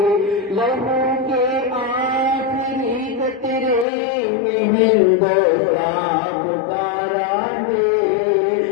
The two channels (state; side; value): drops out; right; at 3.9 s